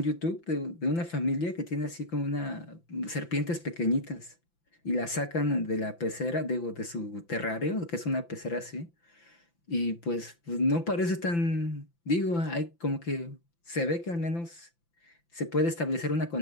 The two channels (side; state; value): right; late; 5.9 ms